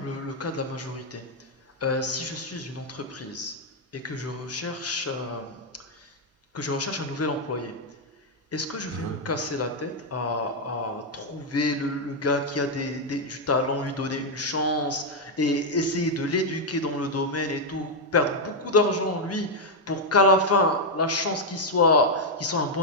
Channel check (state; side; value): normal; both; correlation 0.00